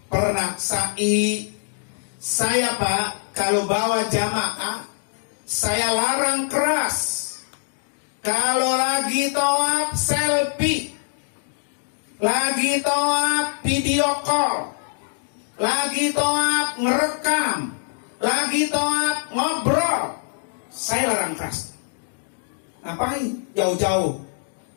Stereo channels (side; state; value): right; silent; digital silence